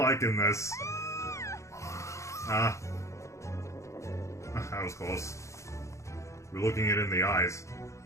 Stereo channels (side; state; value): right; late; 0.14 ms